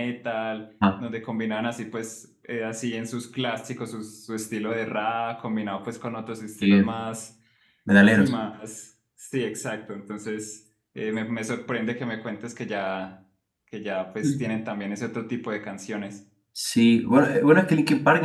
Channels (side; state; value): both; identical; correlation 1.00